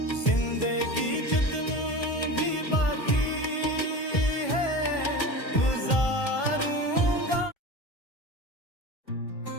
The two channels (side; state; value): right; late; 1.5 ms